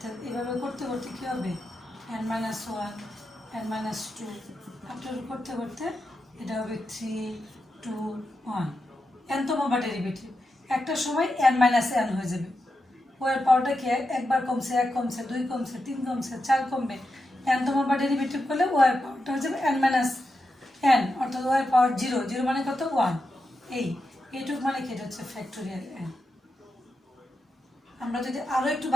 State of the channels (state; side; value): normal; both; correlation 0.88